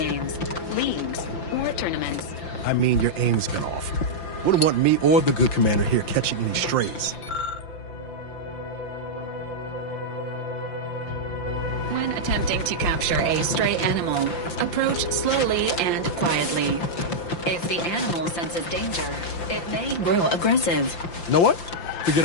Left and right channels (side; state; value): right; late; 5.8 ms